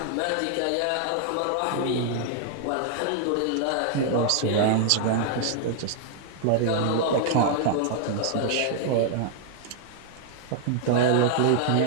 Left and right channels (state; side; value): different; both; correlation 0.00